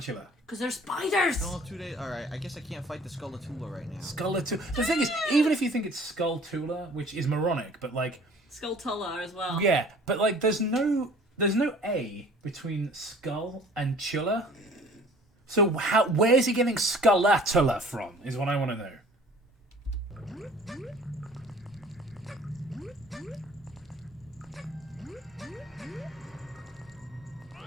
Because they're spiders! No, 2 days. Alright, I guess I can't fight the Skullatula right now. Skullatula. The thing is, even if you think it's Skulltula, which is moronic, but like, Skulltula as well. yeah, but like, there's no A between skull and chula. So where's he getting Skullatula from? Is what I want to know.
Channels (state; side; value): normal; both; correlation 0.50